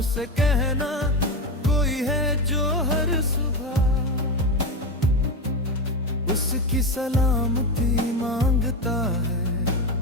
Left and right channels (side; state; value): both; normal; correlation 0.16